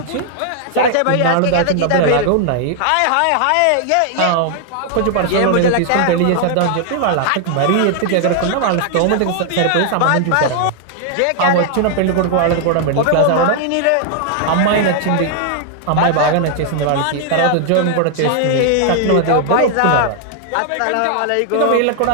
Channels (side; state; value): both; different; correlation 0.00